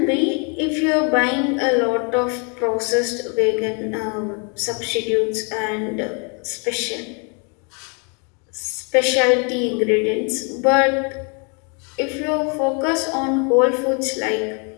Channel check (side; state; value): right; quieter; 36.1 dB